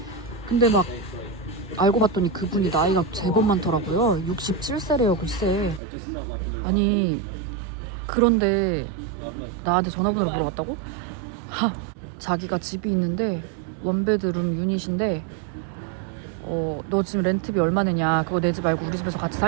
근데 막 알고 봤더니 그분이 나이가 제법 많더라고요. 67세래요 글쎄. 아니 그런데 나한테 전화번호를 물어봤다고? 자기가 집이 있는데 원베드룸 유닛인데 너 지금 렌트비 얼마 내냐, 그거 내지 말고 우리 집에서 같이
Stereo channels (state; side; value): drops out; left; at 5.8 s